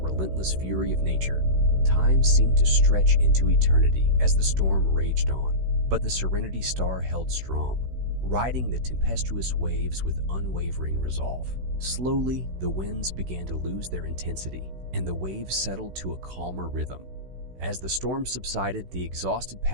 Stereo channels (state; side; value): late; left; 16 ms